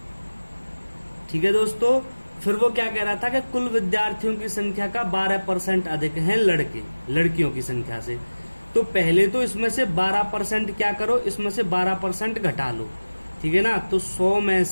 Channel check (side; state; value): both; inverted; correlation -1.00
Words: ठीक है दोस्तों, फिर वो क्या कह रहा था कि कुल विद्यार्थियों की संख्या का 12% अधिक हैं लड़के लड़कियों की संख्या से। तो पहले तो इसमें से 12% क्या करो, इसमें से 12% घटा लो। ठीक है ना, तो 100 में